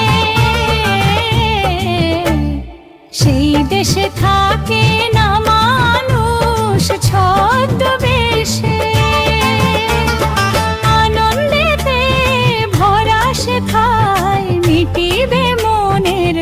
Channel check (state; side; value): identical; both; correlation 1.00